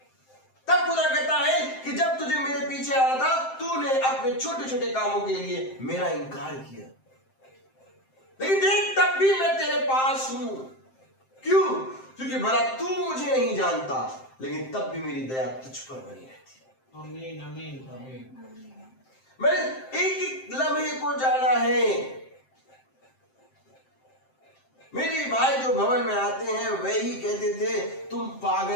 तब खुदा कहता है कि जब तुझे मेरे पीछे आना था, तूने अपने छोटे छोटे कामों के लिए मेरा इनकार किया, लेकिन देख तब भी मैं तेरे पास हूं। क्यों? क्योंकि भला तू मुझे नहीं जानता, लेकिन तब भी मेरी दया तुझ पर बनी रहती है। आमीन आमीन आमीन। मैंने एक एक लम्हे को जाना है। मेरे भाई जो भवन में आते हैं वही कहते थे, तुम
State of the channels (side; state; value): right; late; 7.6 ms